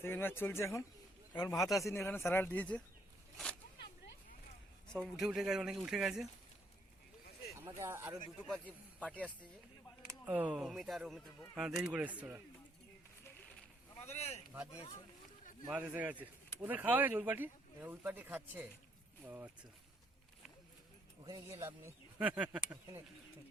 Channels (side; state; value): both; normal; correlation 0.70